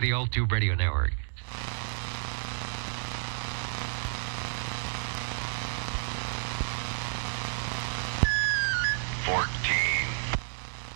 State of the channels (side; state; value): left; silent; 57 dB below the other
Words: the Old Tube Radio Network.